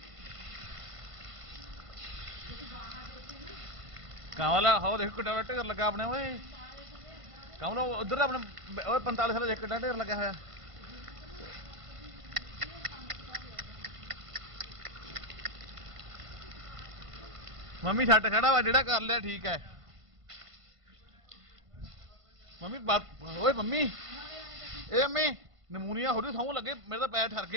कांवला हो देखो कितना ढेर लगा अपने ओए कांवला उधर अपने ओए 45 साल कितना ढेर लगा होया मम्मी छट खड़ा वा जेड़ा कर लिया ठीक है मम्मी ओए मम्मी ए मम्मी नमूनिया हो रही सौ लगे मेरे तो पैर ठर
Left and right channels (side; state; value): left; late; 1.5 ms